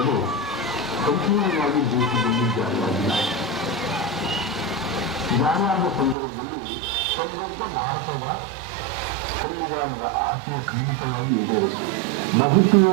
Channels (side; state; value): left; drops out; at 6.2 s